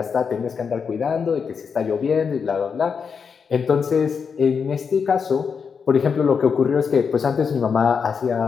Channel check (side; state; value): right; quieter; 6.1 dB